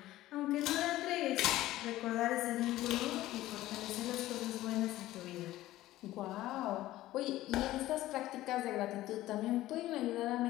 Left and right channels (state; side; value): quieter; right; 15.6 dB